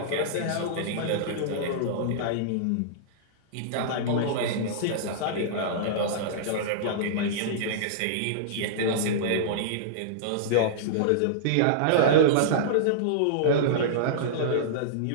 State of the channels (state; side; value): different; both; correlation -0.03